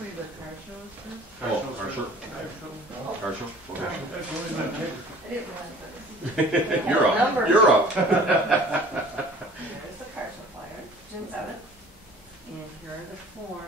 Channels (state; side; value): normal; both; correlation 0.48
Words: the car show is first. Oh, car show. I shall- Car show? Okay. That's only my neighbor. I didn't realize that. You're up. Number. You're up. Here's the car show flyer, June 7th. And here are the